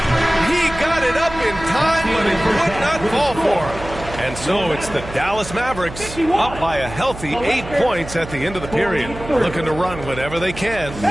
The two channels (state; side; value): noise; right; hum, 12 dB below the sound